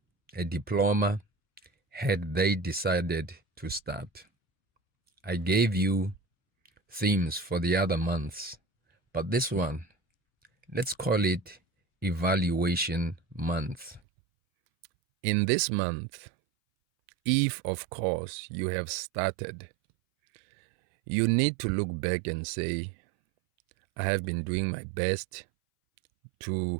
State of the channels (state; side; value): drops out; left; at 14.0 s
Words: a diploma, had they decided to start. I gave you themes for the other months, but this one, let's call it evaluation month. In this month, if of course you have started, you need to look back and say, I have been doing my best